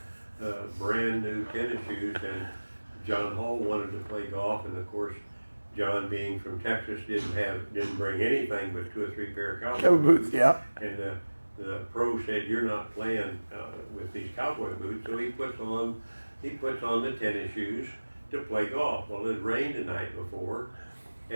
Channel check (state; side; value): inverted; both; correlation -1.00